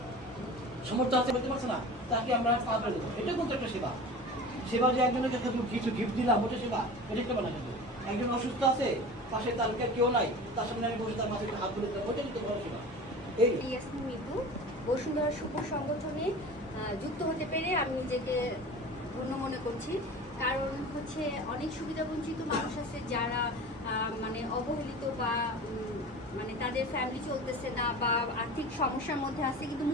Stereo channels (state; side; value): normal; both; correlation 0.36